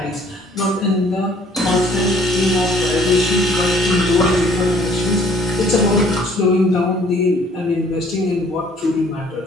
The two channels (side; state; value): both; normal; correlation 0.57